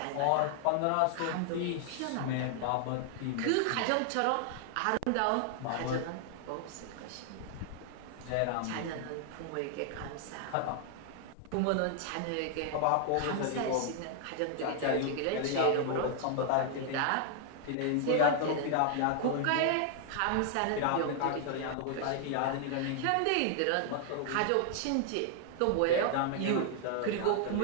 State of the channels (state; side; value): different; both; correlation 0.00